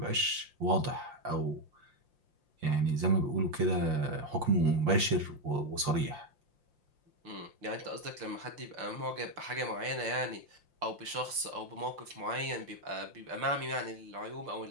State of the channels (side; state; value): left; late; 5.7 ms